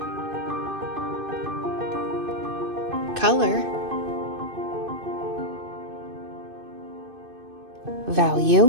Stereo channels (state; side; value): late; left; 2.6 ms